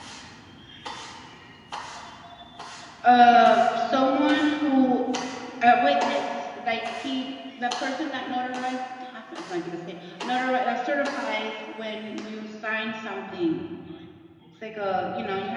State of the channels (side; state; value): both; identical; correlation 1.00